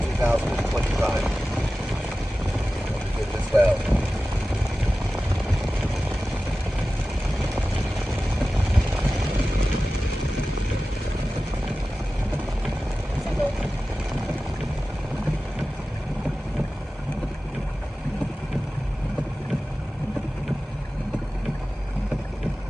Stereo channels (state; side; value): normal; both; correlation 0.95